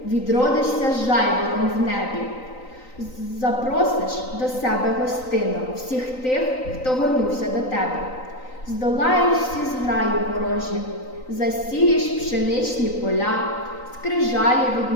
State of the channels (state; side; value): late; right; 3.9 ms